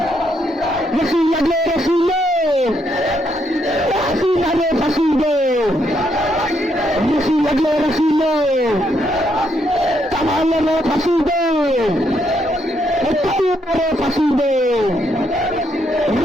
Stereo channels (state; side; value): normal; both; correlation 0.75